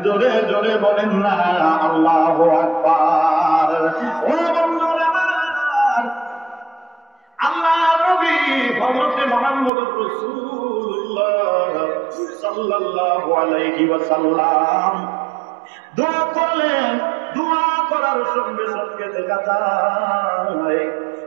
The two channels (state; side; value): drops out; left; at 9.7 s